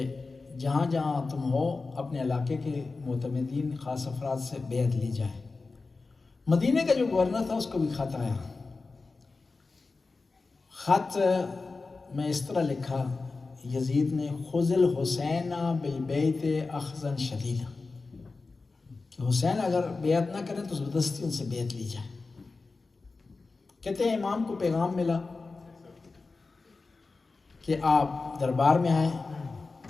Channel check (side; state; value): right; quieter; 3.9 dB